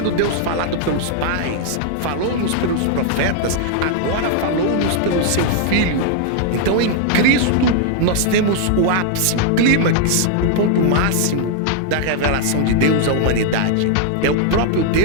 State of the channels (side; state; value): both; different; correlation -0.01